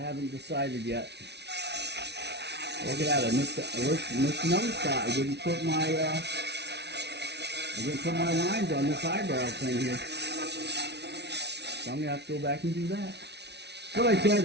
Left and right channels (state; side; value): late; left; 0.50 ms